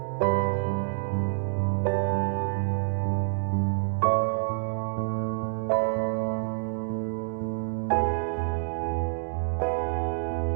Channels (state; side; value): silent; left; digital silence